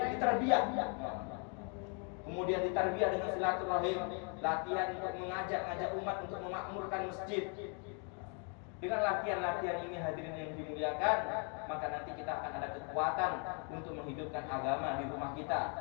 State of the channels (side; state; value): right; quieter; 38.8 dB